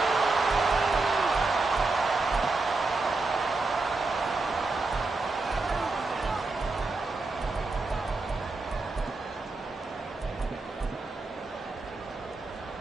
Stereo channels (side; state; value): left; quieter; 3.4 dB